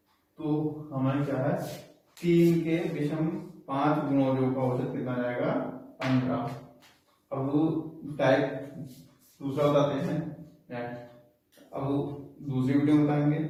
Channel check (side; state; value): both; identical; correlation 1.00